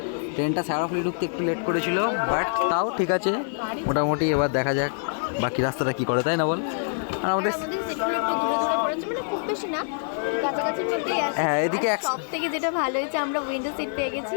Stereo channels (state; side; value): silent; right; digital silence